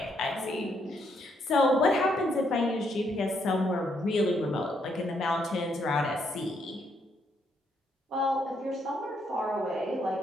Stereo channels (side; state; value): both; normal; correlation 0.74